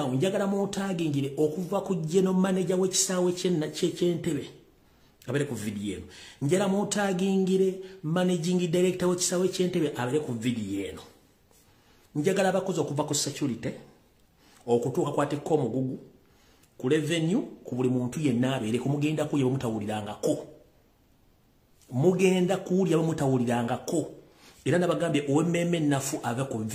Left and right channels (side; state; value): both; identical; correlation 1.00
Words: njagala mutagingire okuva ku general manager w'ekisaawe ky'Entebbe abere ku video eno njala mutagingire managing director w'ekisaawe ky'Entebbe abere ku video eno njagala abakozi okuva ku security okutuuka kwatekko omugugu ku revenue ku buli muntu yenna abeere kumugenda kuye bamutawulirangako mugenda kuulya bamutawulirangako era nabagambye OMM nafu ave ku